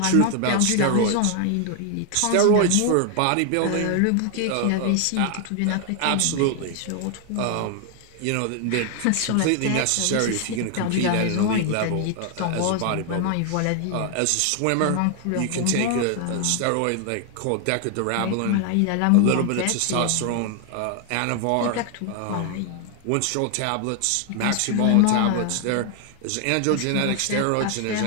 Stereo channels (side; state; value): both; different; correlation 0.00